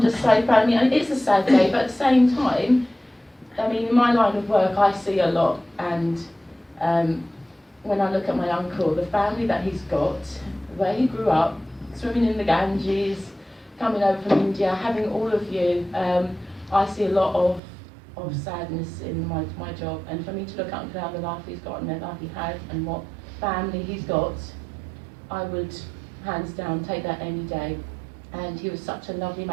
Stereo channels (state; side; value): drops out; left; at 17.6 s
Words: just so proud. I mean, it's a sad day, but at the same time, I mean, in my line of work, I see a lot, and when I look at my uncle, the family that he's got, where he grew up, swimming in the Ganges, coming over from India, having all of you, I see a lot of sadness in my job. And for me to look at Uncle Al, the life he's got and the life he had and what family he's got, I would, hands down, take that any day. And he was such a lovely